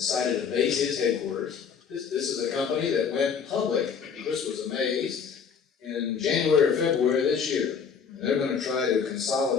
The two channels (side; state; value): right; quieter; 6.5 dB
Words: to base his headquarters. This is a company that went public, Chris was amazed, in January or February of this year. And they're going to try to